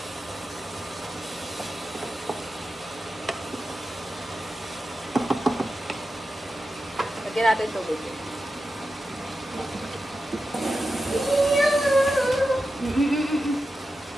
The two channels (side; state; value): both; normal; correlation 0.91